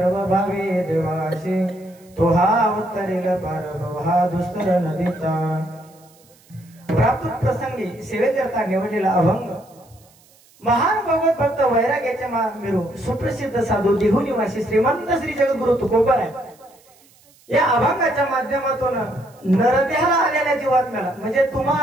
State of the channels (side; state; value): right; noise; hiss, 29 dB below the sound